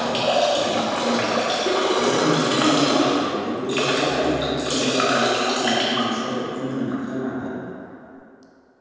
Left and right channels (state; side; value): identical; both; correlation 1.00